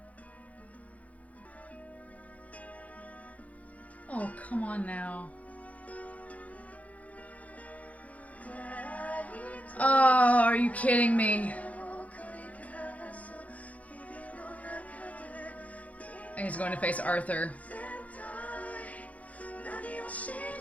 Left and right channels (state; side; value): late; right; 0.069 ms